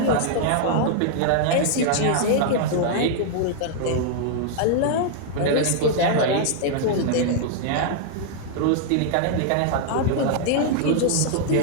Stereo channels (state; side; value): different; both; correlation -0.01